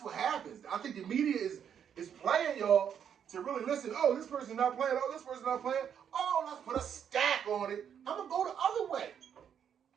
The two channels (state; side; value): quieter; left; 8.4 dB